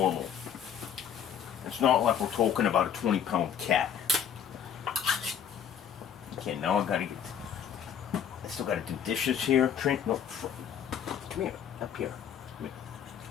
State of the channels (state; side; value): quieter; right; 8.3 dB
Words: It's not like we're talking about a 20-pound cat. Okay, now I still gotta do dishes here. Trent, no, come here, up here. Come here.